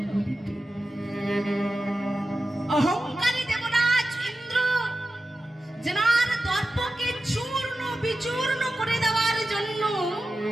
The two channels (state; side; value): normal; both; correlation 0.93